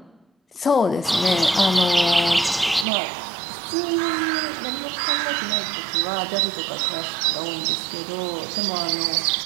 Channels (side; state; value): left; drops out; at 2.9 s